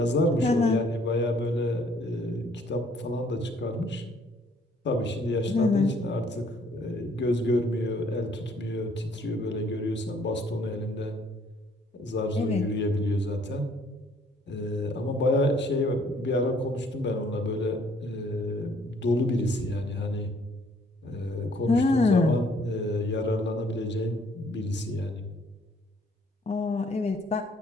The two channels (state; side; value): normal; both; correlation 0.62